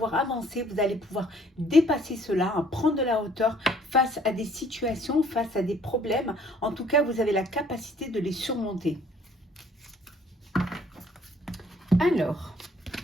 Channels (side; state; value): both; normal; correlation 0.59